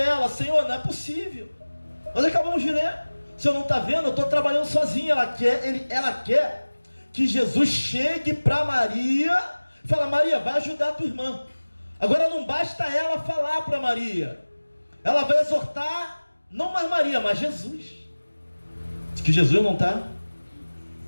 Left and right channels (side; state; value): both; inverted; correlation -1.00